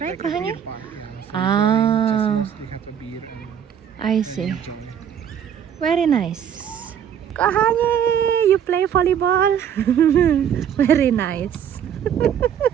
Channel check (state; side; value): quieter; left; 8.8 dB